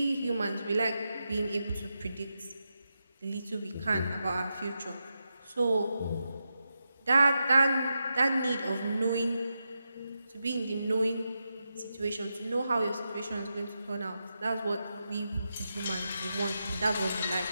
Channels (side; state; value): both; inverted; correlation -0.87